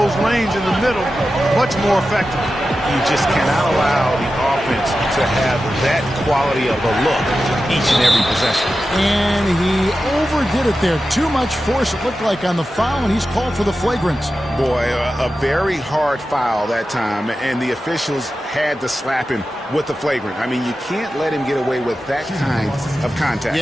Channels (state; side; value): normal; both; correlation 0.92